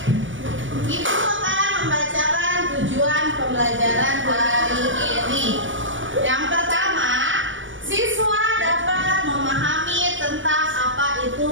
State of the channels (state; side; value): late; left; 0.56 ms